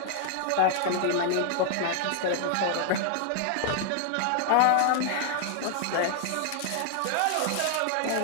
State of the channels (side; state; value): both; different; correlation 0.00